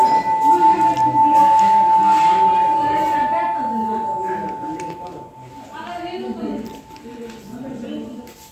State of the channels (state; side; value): identical; both; correlation 1.00